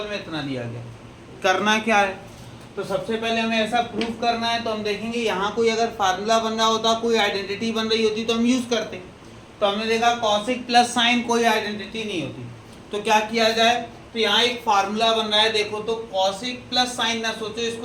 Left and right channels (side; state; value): both; identical; correlation 1.00